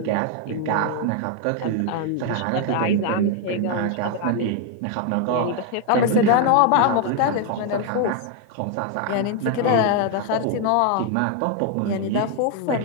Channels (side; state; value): both; different; correlation 0.00